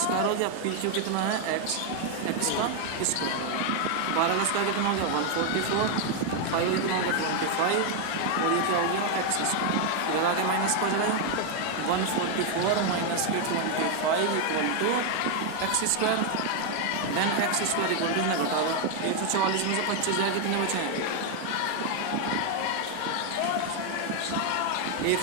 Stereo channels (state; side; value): different; both; correlation 0.01